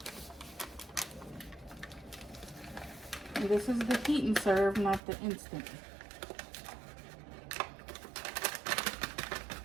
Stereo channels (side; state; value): left; drops out; at 5.0 s